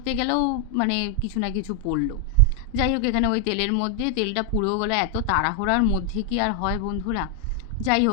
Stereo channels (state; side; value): quieter; right; 4.2 dB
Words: গেলেও মানে কিছু না কিছু পড়লো। যাই হোক, এখানে ওই তেলের মধ্যে তেলটা পুড়েও গেলো। এত তাড়াহুড়ার মধ্যে কি আর হয় বন্ধুরা। যাই